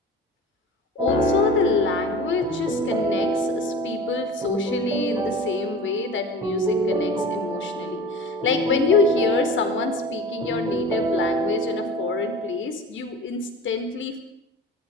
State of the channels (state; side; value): normal; both; correlation 0.37